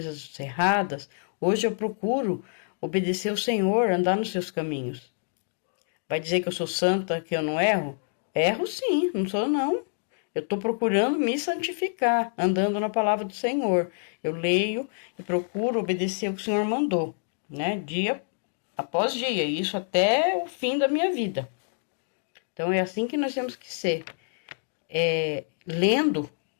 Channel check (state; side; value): silent; right; digital silence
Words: erradas. Hoje eu procuro obedecer o Senhor, andar nos seus caminhos. Vai dizer que eu sou santa, que eu não erro? Erro sim, não sou não. Eu estou procurando me santificar, andando na palavra do Senhor. Eu leio e procuro obedecer o que o Senhor mandou, né? Dia após dia, isso até o fim da minha vida. Então é assim que nós temos que ser. Lendo